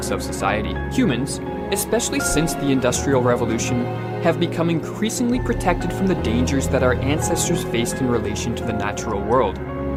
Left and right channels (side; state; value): both; identical; correlation 1.00